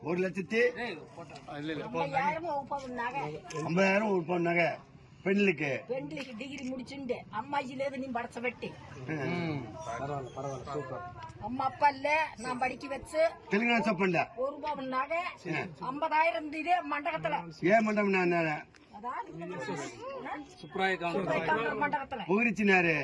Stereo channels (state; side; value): identical; both; correlation 1.00